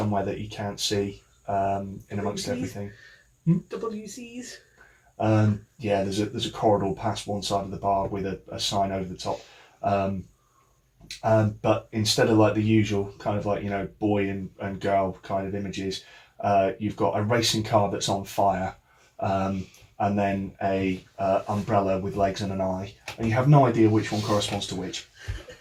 that you can't see in amongst WCs? everything. WCs. Yeah, there's a corridor past one side of the bar with a sign over the top. But instead of like the usual kind of like, you know, boy and girl kind of images, you've got a racing car that's on fire, and then a umbrella with legs and an eye, and you have no idea which one corresponds to which.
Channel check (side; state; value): both; identical; correlation 1.00